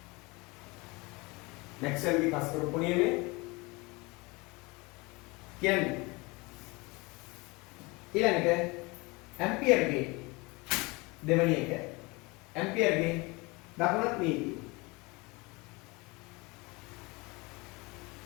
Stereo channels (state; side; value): quieter; right; 25.5 dB